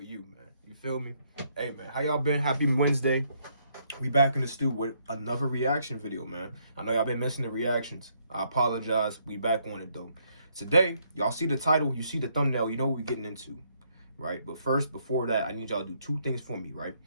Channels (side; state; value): both; inverted; correlation -0.71